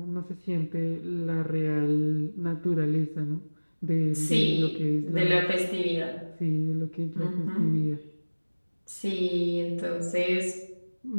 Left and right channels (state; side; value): inverted; both; correlation -1.00